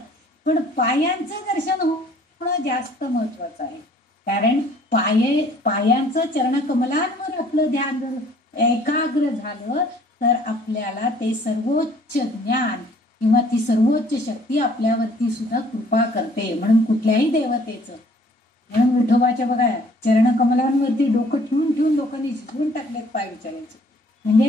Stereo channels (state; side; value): normal; both; correlation 0.57